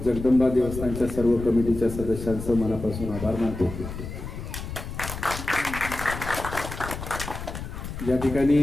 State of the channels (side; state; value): left; noise; rumble, 8 dB below the sound